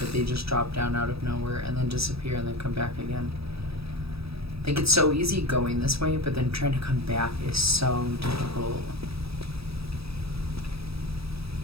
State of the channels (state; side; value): late; left; 0.77 ms